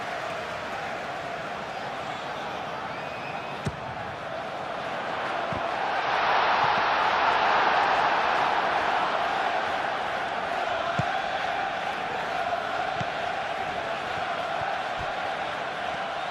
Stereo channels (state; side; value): identical; both; correlation 1.00